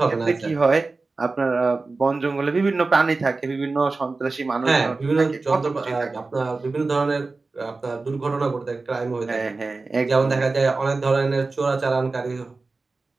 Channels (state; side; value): quieter; left; 3.7 dB